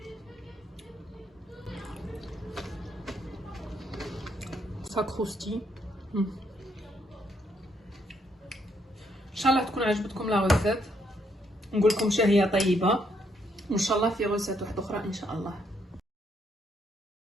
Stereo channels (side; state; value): both; normal; correlation 0.73